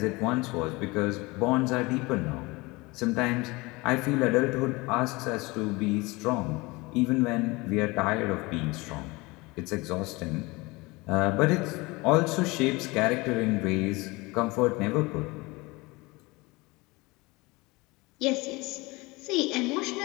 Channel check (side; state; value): right; quieter; 23.7 dB